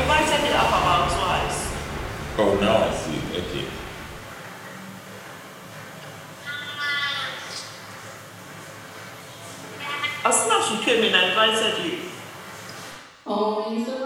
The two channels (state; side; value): identical; both; correlation 1.00